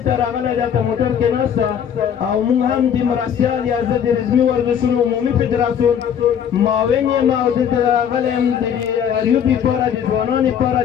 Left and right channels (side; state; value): right; quieter; 8.6 dB